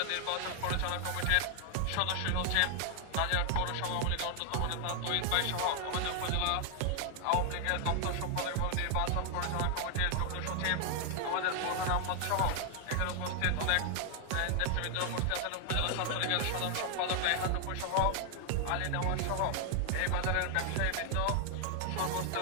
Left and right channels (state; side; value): different; both; correlation 0.00